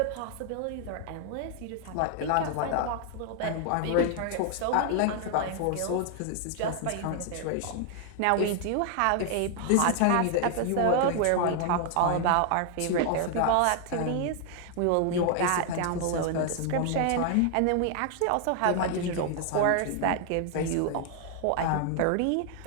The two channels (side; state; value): both; different; correlation 0.00